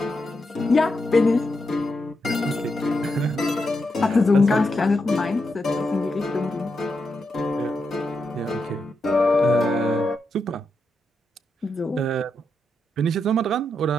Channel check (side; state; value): both; normal; correlation 0.85